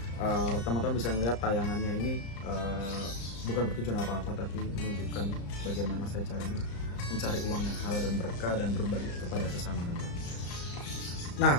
teman-teman bisa lihat tayangannya ini bukan bertujuan apa-apa, tapi menunjukkan bagaimana saya cara mencari uang yang halal dan berkah dan berbagi kepada sesama teman. Nah,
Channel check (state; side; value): late; right; 34 ms